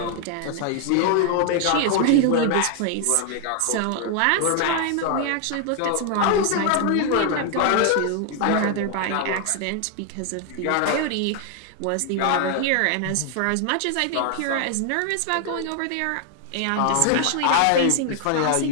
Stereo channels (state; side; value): different; both; correlation 0.00